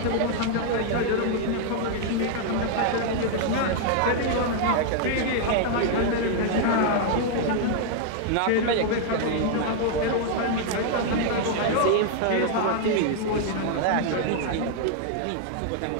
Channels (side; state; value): both; different; correlation 0.00